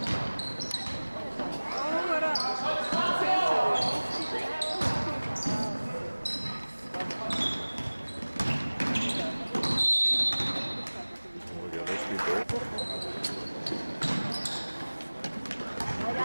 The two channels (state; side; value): inverted; both; correlation -1.00